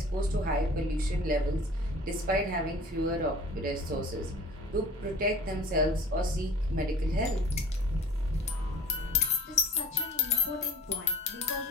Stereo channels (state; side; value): normal; both; correlation 0.45